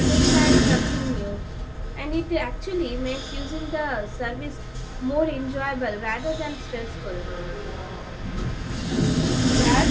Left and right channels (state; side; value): identical; both; correlation 1.00